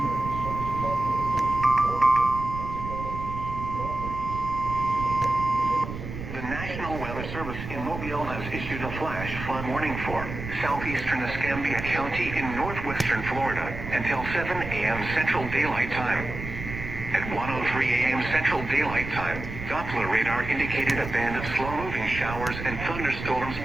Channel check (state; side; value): noise; right; rumble, 8 dB below the sound